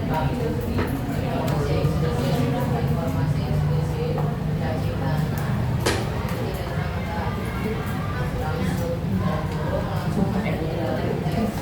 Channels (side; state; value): both; identical; correlation 1.00